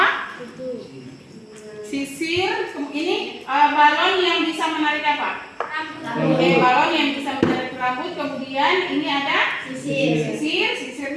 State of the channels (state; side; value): identical; both; correlation 1.00